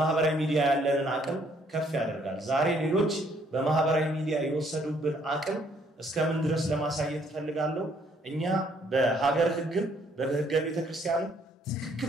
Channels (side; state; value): both; normal; correlation 0.66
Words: ሚዲያ ያለንን አቅም ከፍ ያደርጋል። ዛሬ ሌሎች በማህበራዊ ሚዲያ የወሰዱብን አቅም እስከምን ድረስ ለማሳየት ፈልጋለሁ። እኛ በሀገር ህግም በህገ ቤተክርስቲያን